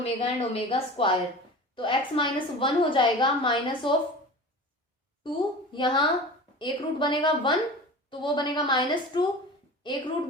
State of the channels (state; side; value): normal; both; correlation 0.36